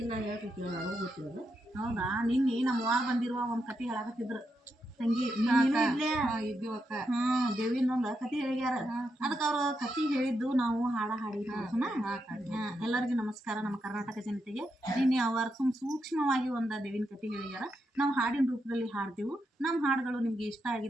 ನಾ ಹೇಳ್ತಿರ್ತೀವಿ ನನಗೂ ಗೊತ್ತಿರೋದು. ಹೌದಾ? ನಿನ್ನೆ ನಮ್ಮ ಅವ್ವ ಬಂದಿರುವ ಒಂದು ಕತೆ ಹೇಳಕತ್ತಿದ್ರು ತಂಗಿ ಇದ್ದೀವಕ್ಕ. ದೇವಿನೊಂದು ಕತೆ ಹೇಳ್ಯಾರ. ಅದಕ್ಕೆ ಅವ್ರ ಕತೆ ಹೇಳಿದ್ದು ನಾವು ಹಾಡಿದ್ವಿ. ಎಲ್ಲರಿಗೂ ನಮಸ್ಕಾರ. ನಮ್ಮ ಕರ್ನಾಟಕ ಜನತೆಗೆ ನಿನ್ನೆ ಅವರು ಸೂಕ್ಷ್ಮವಾಗಿ ಒಂದು ದೇವಿನ ಕತೆ ಹೇಳ್ಯಾರ. ನಾವು ಹಾಡಿನ ರೂಪದಲ್ಲಿ ಹಾಡ್ತೀವಿ. ನಮ್ಮ ಹಾಡುಗಳು ನಿಮ್ಗೆ ಇಷ್ಟ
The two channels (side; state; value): both; normal; correlation 0.83